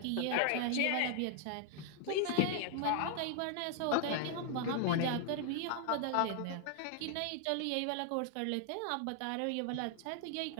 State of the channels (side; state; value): both; different; correlation 0.00